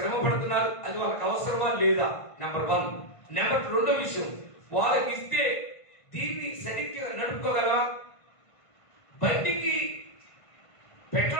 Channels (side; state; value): right; late; 1.5 ms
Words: పడుతున్నారు, అది వాళ్ళకి అవసరమా లేదా, నెంబర్ 1. నెంబర్ 2 విషయం, వాళ్ళకి ఇస్తే దీన్ని సరిగ్గా నడుపుకోగలరా. బండికి